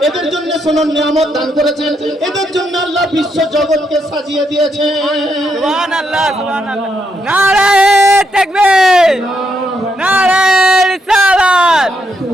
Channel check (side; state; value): both; normal; correlation 0.78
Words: এদের জন্য সোনার নিয়ামত দান করেছেন, এদের জন্য আল্লাহ বিশ্ব জগৎকে সাজিয়ে দিয়েছেন। সুবহানাল্লাহ, সুবহানাল্লাহ। নারায়ে তাকবীর, নারায়ে রিসালাত,